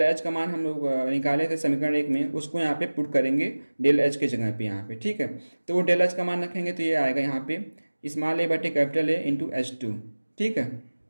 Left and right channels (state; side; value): inverted; both; correlation -1.00